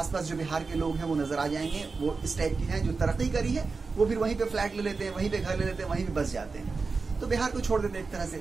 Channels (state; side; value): quieter; left; 4.4 dB